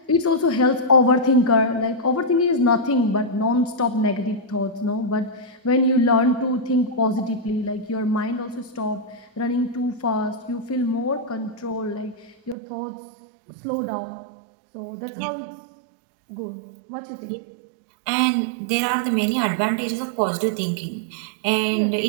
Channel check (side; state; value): left; drops out; at 12.6 s